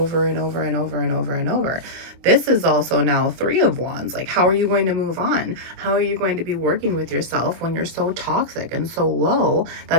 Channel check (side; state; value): left; late; 24 ms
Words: and over and over and over and over. This is also now 3 of Wands. Like, how are you going to move on? How are you going to be working with yourself when you're so toxic and so low